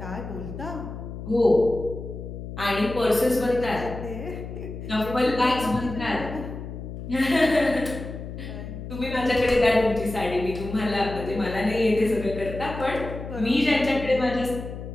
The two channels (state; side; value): noise; left; hum, 9 dB below the sound